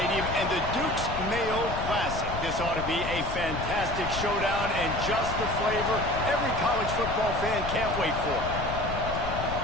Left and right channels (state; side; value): noise; left; rumble, 6 dB below the sound